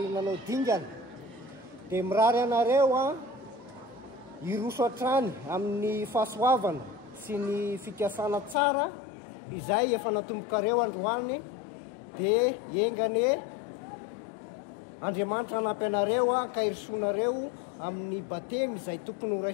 nanao dingana. Dia mirary anareo hiroso hatrany amin'ny fahasoavana sy ny fikasana tsara izay efa natombokareo androany. Dia engany Andriamanitra hanampy anareo ka hirisonareo amin'ny batemy izay tokony ho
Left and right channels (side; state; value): right; drops out; at 8.6 s